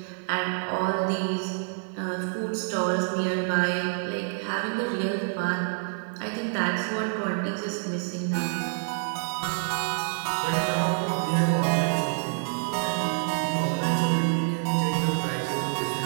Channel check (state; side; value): silent; left; 60 dB below the other